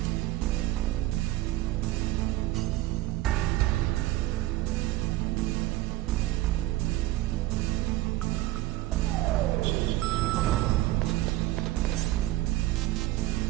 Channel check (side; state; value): left; quieter; 16.0 dB